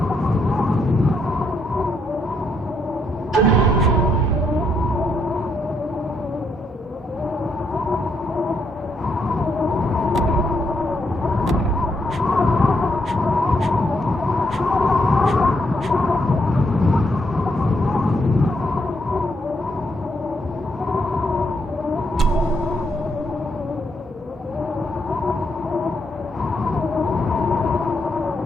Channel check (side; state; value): both; normal; correlation 0.76